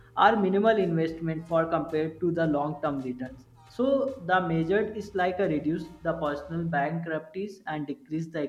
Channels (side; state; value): both; identical; correlation 1.00